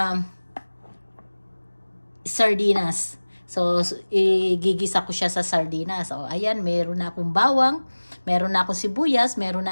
sardinas. So, igigisa ko siya sa sardinas. So, ayan, meron na akong bawang, meron na akong sibuyas, meron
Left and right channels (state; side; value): inverted; both; correlation -1.00